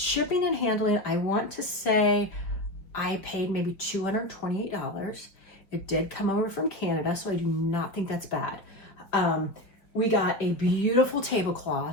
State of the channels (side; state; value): right; late; 4.8 ms